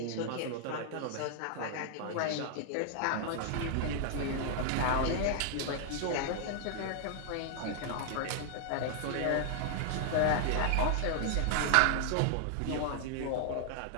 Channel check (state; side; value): different; both; correlation 0.00